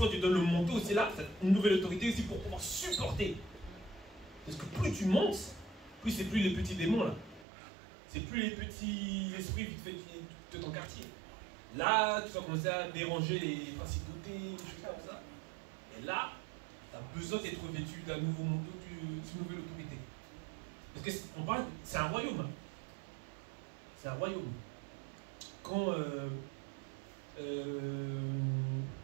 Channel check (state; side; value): drops out; left; at 7.5 s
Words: tu donnes le manteau aussi là, c'est une nouvelle autorité aussi pour pouvoir supporter. Parce que plus tu montes, plus c'est plus les petits démons là. C'est plus les petits esprits vite fait de ton quartier. Là, tu vas commencer à déranger les principautés, des choses comme ça. Et là, tu as besoin d'être revêtu d'un nouveau manteau, d'une nouvelle autorité. Parce que on parle, c'est un royaume. Hein. C'est un royaume. Quand